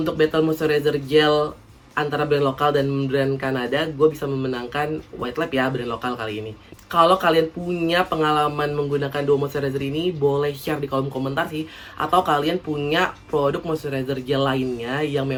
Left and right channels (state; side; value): identical; both; correlation 1.00